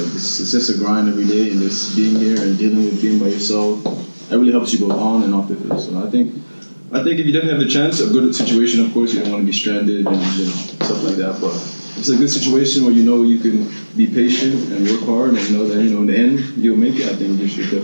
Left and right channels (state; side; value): inverted; both; correlation -1.00